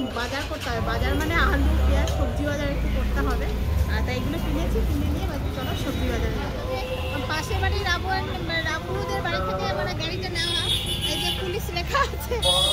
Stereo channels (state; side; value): identical; both; correlation 1.00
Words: বাজার করতে হবে, বাজার মানে আলু পেঁয়াজ সবজি বাজার একটু করতে হবে। তাই এগুলো কিনেছি, কিনে নিয়ে চলো সবজি বাজারে যাবো। পাশের বাড়ি রাবুদের বাড়ি থেকে মানে গাড়িটা নেওয়া, এই যে পুলিশ লেখা আছে,